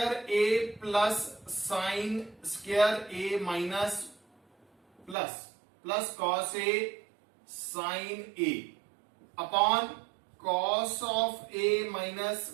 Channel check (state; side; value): drops out; left; at 5.2 s